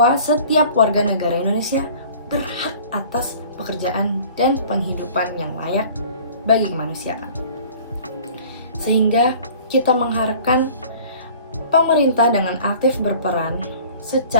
setiap warga negara Indonesia berhak atas pekerjaan dan penghidupan yang layak bagi kemanusiaan. Sehingga kita mengharapkan pemerintah dengan aktif berperan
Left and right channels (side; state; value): both; inverted; correlation -0.47